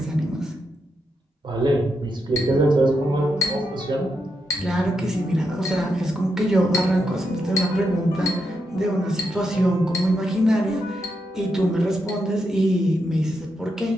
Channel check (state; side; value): normal; both; correlation 0.83